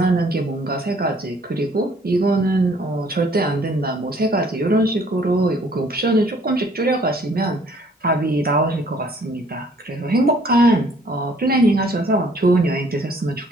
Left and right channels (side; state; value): both; normal; correlation 0.60